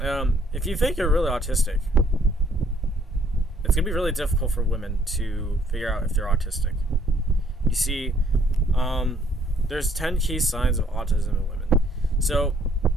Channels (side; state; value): both; normal; correlation 0.64